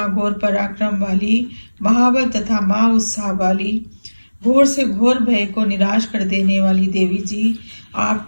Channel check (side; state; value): both; inverted; correlation -1.00